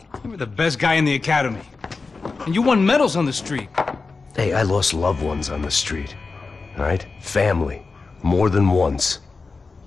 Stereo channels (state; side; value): quieter; right; 4.2 dB